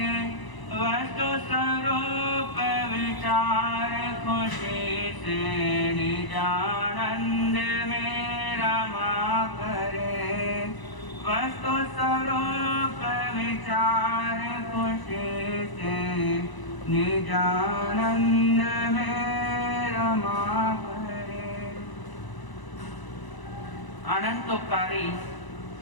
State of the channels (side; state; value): right; late; 1.0 ms